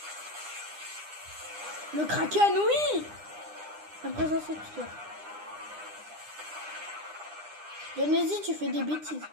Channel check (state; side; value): late; left; 9.9 ms